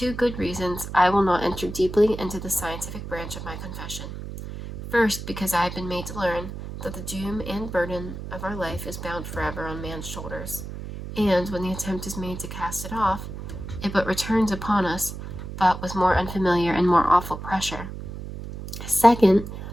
good reasons, I will not enter deeply into the scientific branch of my confession. First, because I have been made to learn that the doom and burden of our life is bound forever on man's shoulders, and when the attempt is made to cast it off, it but returns upon us, but with more unfamiliar and more awful pressure. Second,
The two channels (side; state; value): right; noise; hum, 9 dB below the sound